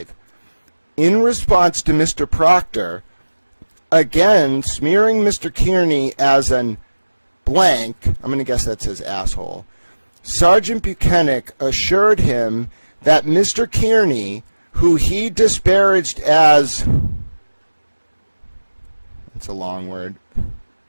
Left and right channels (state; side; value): inverted; both; correlation -1.00